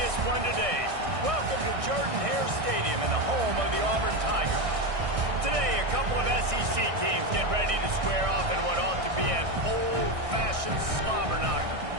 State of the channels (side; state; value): left; late; 1.6 ms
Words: one today. Welcome to Jordan-Hare Stadium and the home of the Auburn Tigers. Today, a couple of SEC teams get ready to square off in what ought to be an old-fashioned slobber knocker.